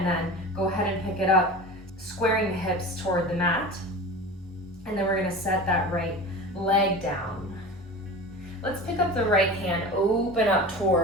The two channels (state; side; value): normal; both; correlation 0.33